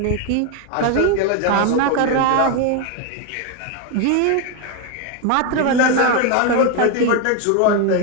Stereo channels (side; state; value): both; different; correlation 0.01